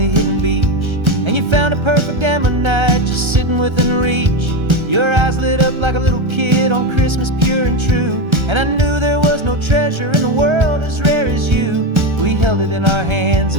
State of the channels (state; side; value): late; left; 1.3 ms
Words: hidden beach, and you found a perfect ammonite just sitting within reach. Your eyes lit up like a little kid on Christmas, pure and true, and I knew there was no treasure in the world as rare as you. We held it in our hands